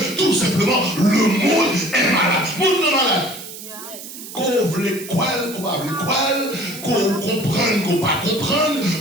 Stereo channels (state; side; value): noise; right; hiss, 13 dB below the sound